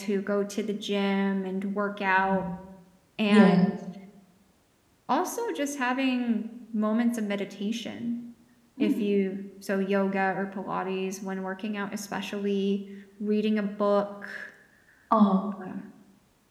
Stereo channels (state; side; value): identical; both; correlation 1.00